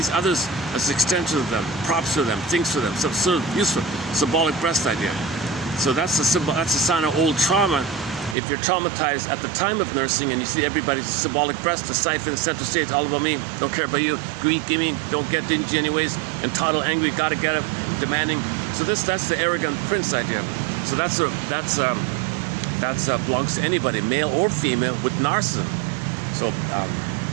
others as extensions of them, props for them, things for them, some sort of useful, symbolic breast idea. So that's a sign of old trauma. If you're traumatized at the time of nursing and you see everybody's symbolic breast, the siphon, center stage, all about me, don't care about you, greed, gimme, don't get dingy anyways, entitled, angry, gotta get it, demanding. So that's the arrogant prince idea. So that belongs to anybody, male or female, with narcissism. So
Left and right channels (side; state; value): left; drops out; at 8.3 s